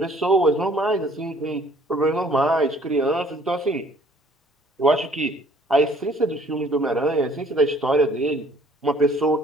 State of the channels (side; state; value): both; normal; correlation 0.58